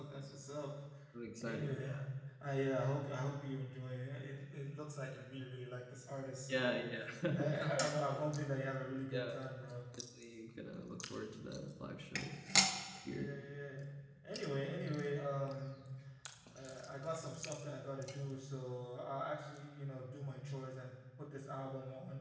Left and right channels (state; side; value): identical; both; correlation 1.00